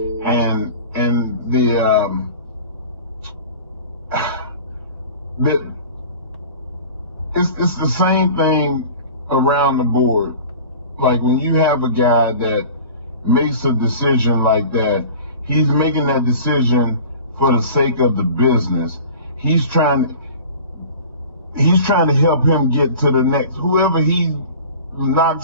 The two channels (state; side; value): inverted; both; correlation -0.40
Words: And it's the same thing around the board. Like when you have a guy that makes a decision like that, he's making that decision for the sake of the business. He's trying to help him get to the next. Whoever he